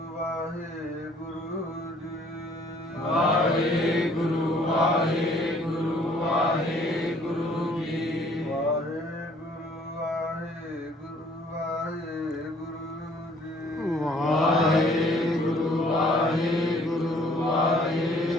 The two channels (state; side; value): normal; both; correlation 0.59